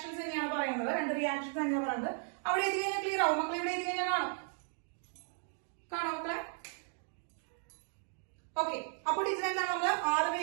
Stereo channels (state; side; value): silent; left; 54 dB below the other